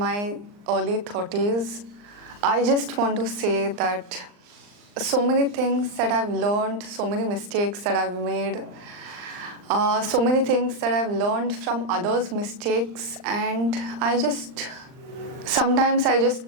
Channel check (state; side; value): late; left; 39 ms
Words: early 30s, I just want to say that so many things that I've learned, so many mistakes that I've made, so many things that I've learned from others' mistakes, and sometimes I just